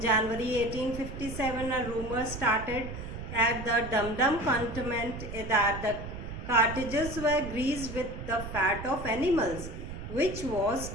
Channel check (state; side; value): noise; right; rumble, 9 dB below the sound